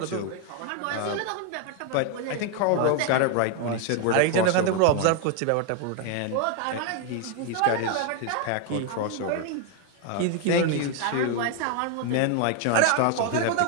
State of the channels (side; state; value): both; different; correlation 0.01